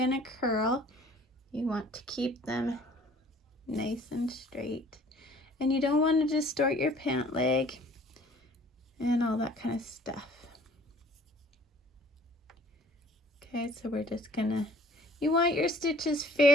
curl. You want to keep them nice and straight. And you don't want to distort your pant leg and all that kind of stuff. Okay, so we're just gonna, you want your stitches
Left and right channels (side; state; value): both; normal; correlation 0.54